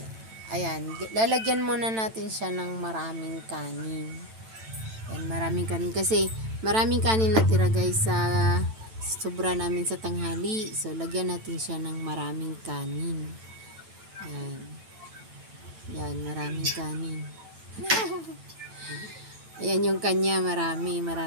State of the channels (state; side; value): late; left; 9.0 ms